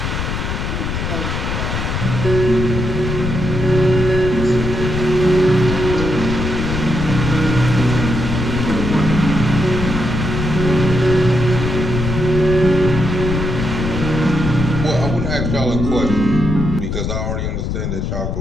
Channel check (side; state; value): left; noise; rumble, 2 dB below the sound